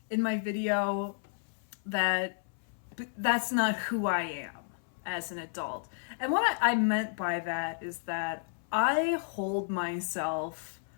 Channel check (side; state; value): right; silent; 56 dB below the other